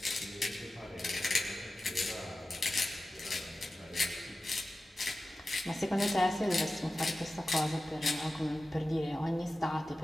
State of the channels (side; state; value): both; normal; correlation 0.94